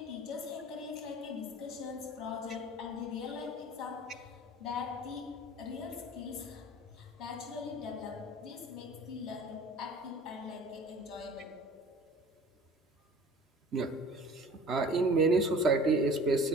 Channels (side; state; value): both; normal; correlation 0.45